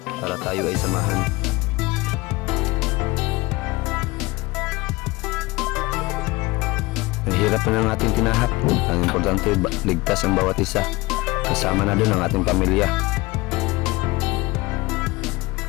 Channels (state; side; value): quieter; right; 21.9 dB